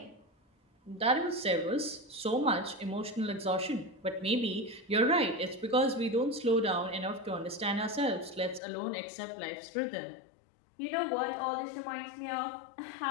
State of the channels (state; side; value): drops out; right; at 8.6 s